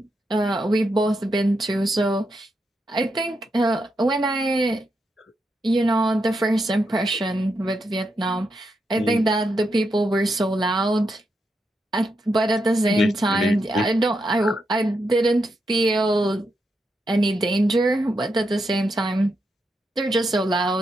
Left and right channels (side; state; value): both; normal; correlation 0.83